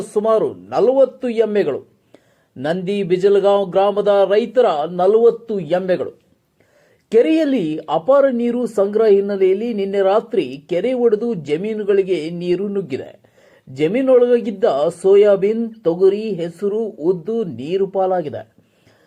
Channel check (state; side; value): identical; both; correlation 1.00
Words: ಸುಮಾರು 40 ಎಮ್ಮೆಗಳು. ನಂದಿ ಬಿಜಲಗಾಂವ್ ಗ್ರಾಮದ ರೈತರ 40 ಎಮ್ಮೆಗಳು. ಕೆರೆಯಲ್ಲಿ ಅಪಾರ ನೀರು ಸಂಗ್ರಹ ಹಿನ್ನೆಲೆಯಲ್ಲಿ ನಿನ್ನೆ ರಾತ್ರಿ ಕೆರೆ ಒಡೆದು ಜಮೀನುಗಳಿಗೆ ನೀರು ನುಗ್ಗಿದೆ. ಜಮೀನೊಳಗಿದ್ದ ಸೋಯಾಬೀನ್, ತೊಗರಿ, ಹೆಸರು, ಉದ್ದು ನೀರು ಪಾಲಾಗಿದೆ.